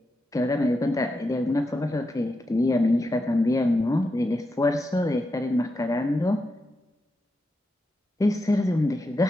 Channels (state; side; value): normal; both; correlation 0.87